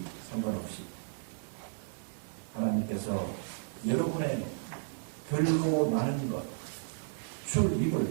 상관없이 하나님께서 여러분의 별로 나는 것, 출입을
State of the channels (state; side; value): silent; left; 55 dB below the other